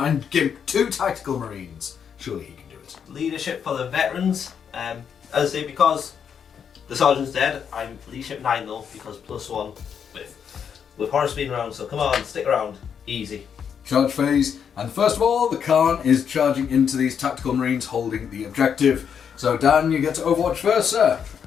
and gimp 2 tactical marines. Surely he can do it. Leadership for the veterans. As I say, because the sergeant's dead, I'm leadership 9 though, because +1 with Horus being around, so come on, stick around. Easy. Charge phase, and first of all, the Khan is charging into these tactical marines holding the objective. So Dan, you get to Overwatch first, sir.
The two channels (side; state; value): right; quieter; 7.5 dB